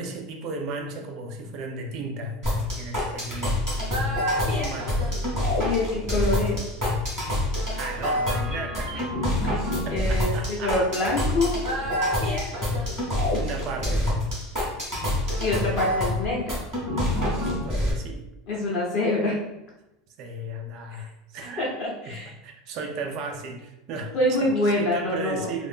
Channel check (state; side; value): normal; both; correlation 0.33